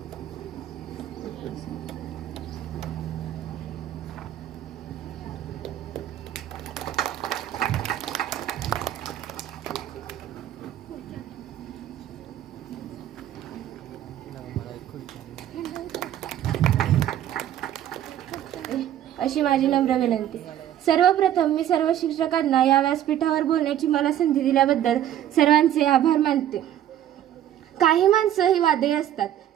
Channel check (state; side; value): quieter; left; 11.5 dB